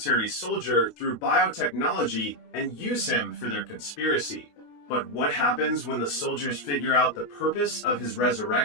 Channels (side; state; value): right; late; 28 ms